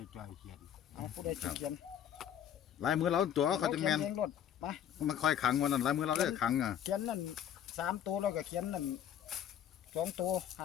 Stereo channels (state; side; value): quieter; right; 9.8 dB